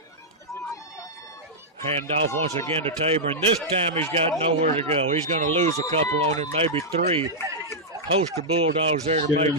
Hand off once again to Tabor, and this time he's got nowhere to go. He's going to lose a couple on it, maybe 3. Host of Bulldogs there to make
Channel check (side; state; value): both; normal; correlation -0.08